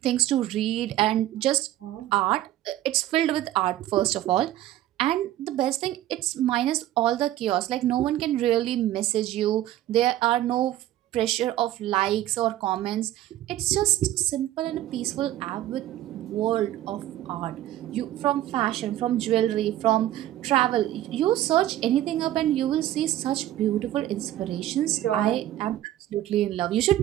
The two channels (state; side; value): quieter; left; 13.7 dB